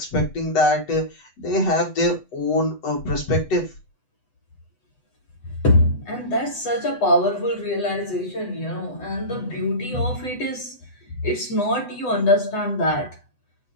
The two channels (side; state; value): right; late; 8.0 ms